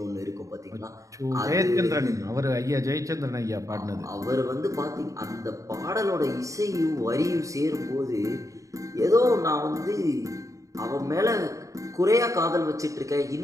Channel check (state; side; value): late; left; 0.16 ms